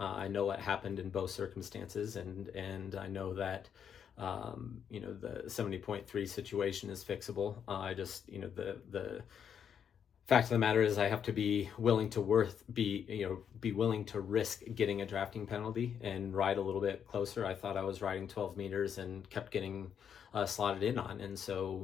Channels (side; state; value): right; quieter; 8.0 dB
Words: know what happened in both circumstances, and I know that the 70.3 situation is fixable. I just the fact of the matter is I have to be willing to be willing to risk getting a drafting penalty and ride a little bit closer. I thought I was riding 12 meters and kept getting slotted in on. And